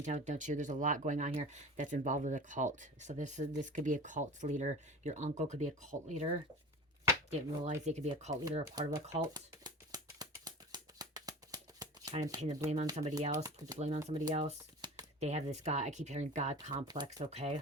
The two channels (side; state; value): both; normal; correlation 0.36